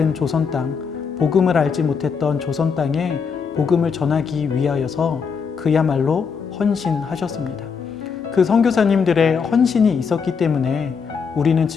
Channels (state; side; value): quieter; right; 5.9 dB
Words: 조선 땅, 복음을 알지 못했던 조선 땅에 복음을 전하기 위하여서 그야말로 헌신하셨습니다. 그 선교사님들의 헌신이 있었기 때문에 우리는